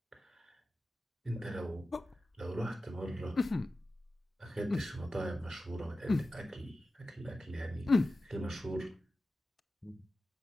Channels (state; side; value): normal; both; correlation 0.94